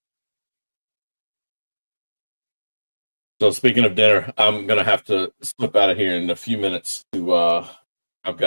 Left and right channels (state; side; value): inverted; both; correlation -1.00